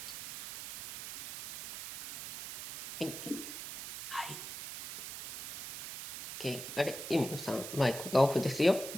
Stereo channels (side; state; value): right; noise; hiss, 9 dB below the sound